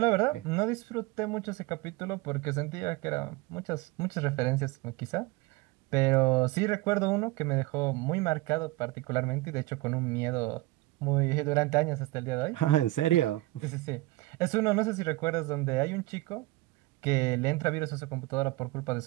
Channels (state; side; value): quieter; left; 20.0 dB